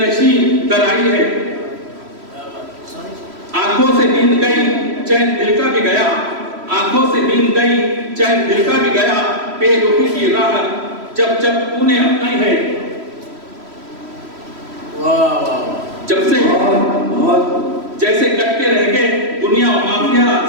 در آئی ہے. آنکھوں سے نیند گئی چین دل کا بھی گیا، آنکھوں سے نیند گئی چین دل کا بھی گیا. بے رخی کی راہ جب جب تو نے اپنائی ہے. جب سے جیسے کٹ کے رہ گئے دنیا و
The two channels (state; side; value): late; left; 3.1 ms